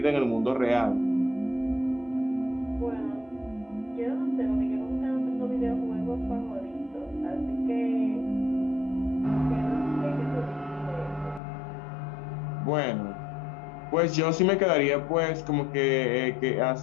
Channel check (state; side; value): drops out; right; at 11.4 s